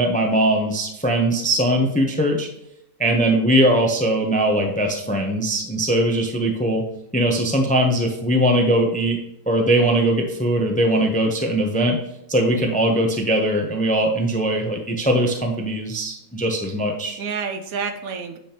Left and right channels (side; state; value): both; normal; correlation 0.31